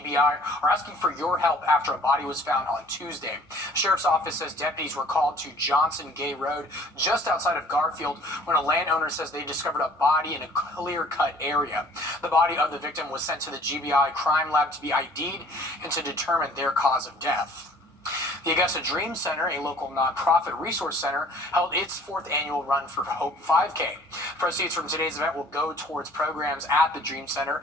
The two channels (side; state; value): both; normal; correlation 0.53